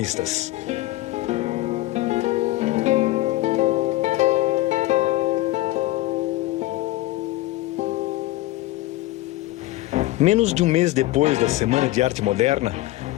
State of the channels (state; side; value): quieter; right; 17.6 dB